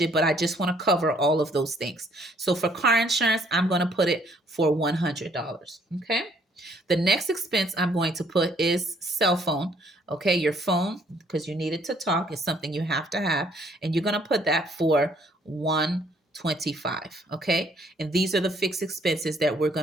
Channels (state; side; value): normal; both; correlation 0.64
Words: but I just want to cover all of those things. So for car insurance, I'm going to put it for $100. Okay. The next expense I'm going to put is cell phone. Okay, your phone, because you need it to talk, is something you have to have, and you're going to put that for 125. Okay, and these are the fixed expenses that we're